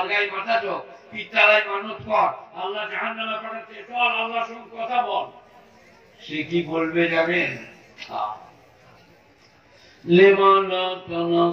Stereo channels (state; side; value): identical; both; correlation 1.00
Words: মাথা ঠোক, পিত্তালায় মানত কর, আল্লাহ জাহান্নামে পাঠাচ্ছে, চল আল্লাহর সঙ্গে কথা বল। সে কি বলবে জানেন? লিমা লা